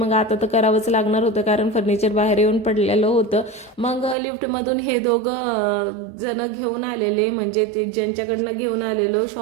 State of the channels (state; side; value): drops out; left; at 4.2 s